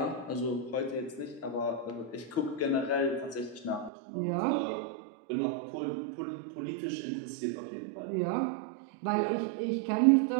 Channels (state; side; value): drops out; left; at 3.9 s